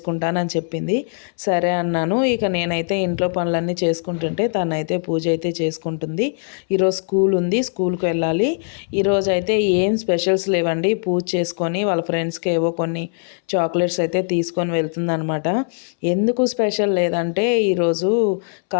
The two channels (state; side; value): silent; right; 63 dB below the other